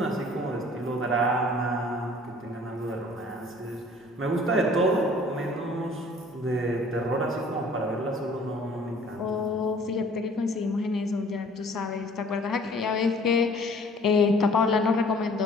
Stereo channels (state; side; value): normal; both; correlation 0.53